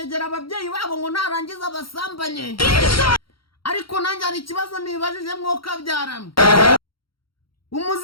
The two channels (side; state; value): right; late; 0.74 ms